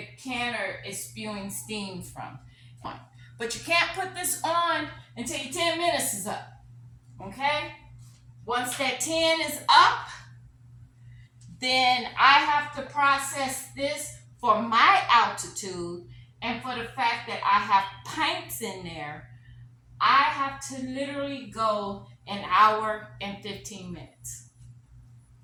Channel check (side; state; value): both; identical; correlation 1.00